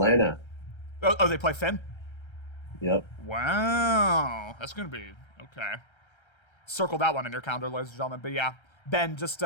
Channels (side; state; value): right; late; 1.3 ms